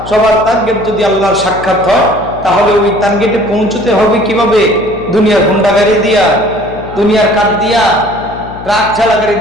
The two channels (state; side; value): noise; left; hum, 14 dB below the sound